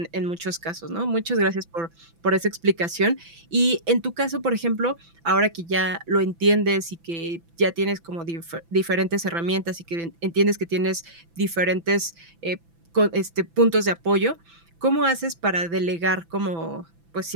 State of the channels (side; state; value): left; late; 6.0 ms